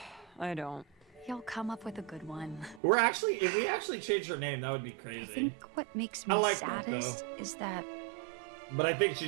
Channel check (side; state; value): left; drops out; at 2.8 s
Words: I don't. You'll come up with a good one. If we actually changed her name, that would be I crazy. think what makes I me like that, saddest though. is that But I think